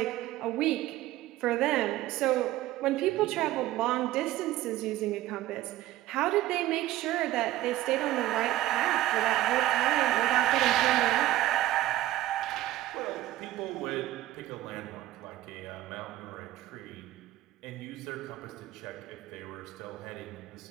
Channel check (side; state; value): left; quieter; 15.2 dB